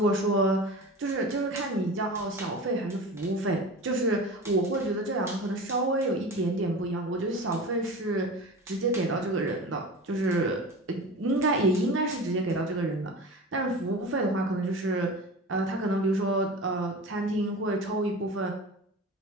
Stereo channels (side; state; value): both; normal; correlation 0.33